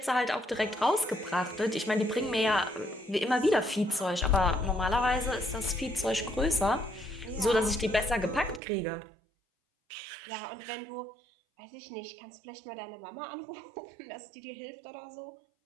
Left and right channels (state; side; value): drops out; left; at 8.6 s